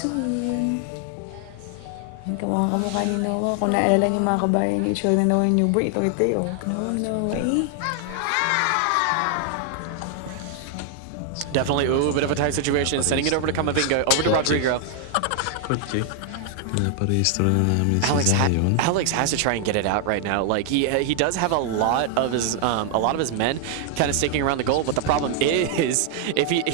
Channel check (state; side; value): different; both; correlation 0.00